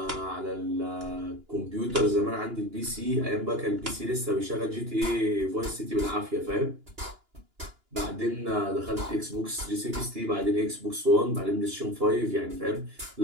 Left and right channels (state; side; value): late; left; 2.9 ms